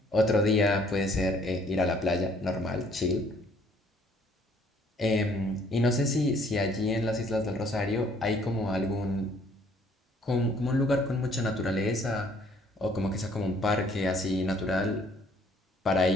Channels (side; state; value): both; normal; correlation 0.61